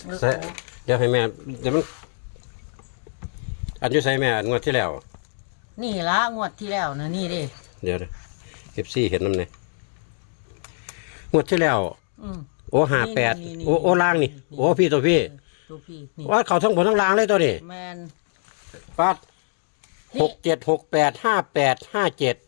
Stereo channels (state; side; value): silent; right; digital silence